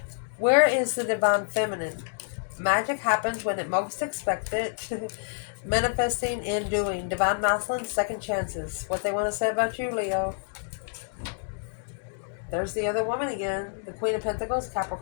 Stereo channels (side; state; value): right; silent; digital silence